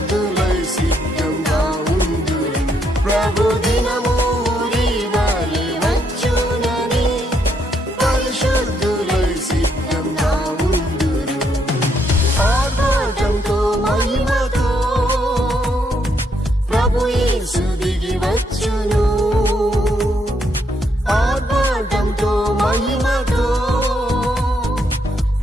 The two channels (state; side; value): normal; both; correlation 0.75